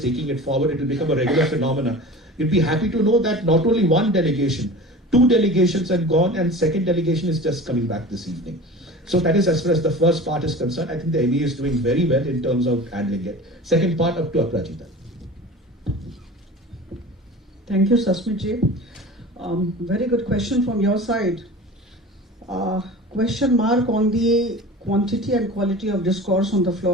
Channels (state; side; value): normal; both; correlation 0.37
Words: taking it forward, it will become a regular phenomenon. You'll be happy to know that not only one delegation, 2 delegations have gone, and second delegation is just coming back this evening. So that is as far as the first part is concerned. I think the MEA is doing very well in terms of handling it. Second part, up to Aprajita. Thank you, Sasmit ji. Very good question from your side. Question mark on the quantity and quality of discourse on the